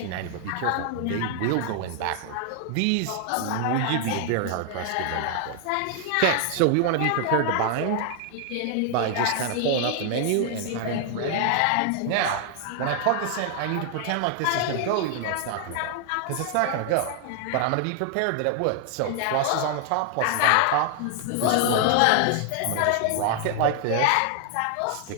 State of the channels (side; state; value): both; different; correlation 0.00